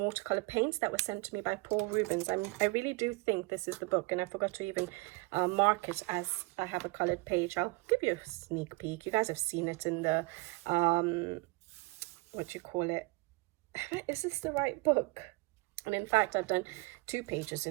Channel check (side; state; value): left; quieter; 25.3 dB